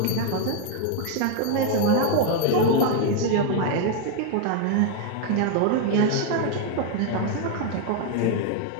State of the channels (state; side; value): different; both; correlation 0.00